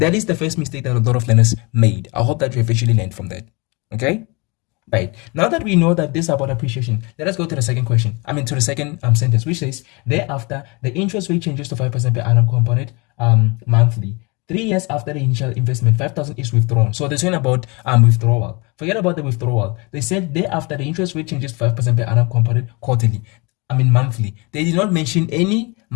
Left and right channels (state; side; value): quieter; right; 28.2 dB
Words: is the first mistake that a lot of learners made. I hope that you have actually learned from that. Okay? Right. Now that we know that this is about appreciation, let us go to the second question. To the second sentence, which says, thereafter, the interest rate changes to 5% per annum compounded monthly. 3 years after the initial investment, 5,000 is withdrawn. So they're saying about withdrawal. Forget about the withdrawal. They said thereafter the interest rate changes 5% per annum compounded quarterly. Monthly. They did not mention any